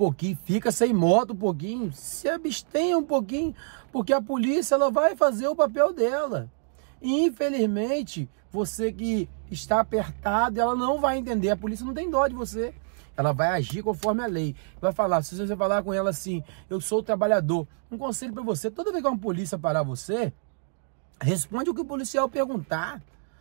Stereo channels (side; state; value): left; silent; digital silence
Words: fica sem moto um pouquinho, se abstenha um pouquinho, porque a polícia ela vai fazer o papel dela. E, infelizmente, você que está apertado, ela não vai entender, a polícia não tem dó de você. Ela vai agir conforme a lei. Vai falar, se você falar com ela assim, eu sou o trabalhador. Um conselho para você, toda vez que uma polícia parar você, responde o que o policial perguntar.